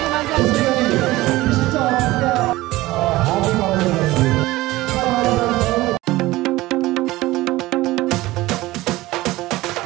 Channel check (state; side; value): quieter; left; 18.5 dB